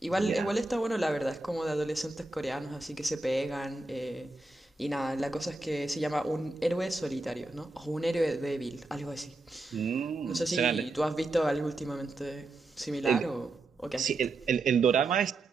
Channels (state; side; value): quieter; left; 3.1 dB